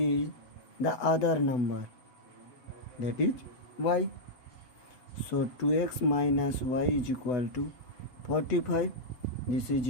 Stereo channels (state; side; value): late; right; 8.0 ms